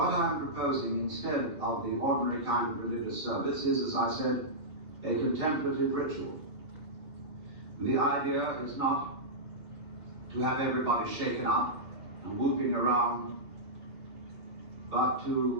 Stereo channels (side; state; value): left; late; 2.2 ms